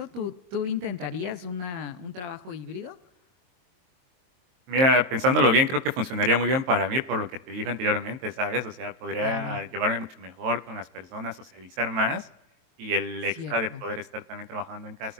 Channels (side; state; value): left; late; 23 ms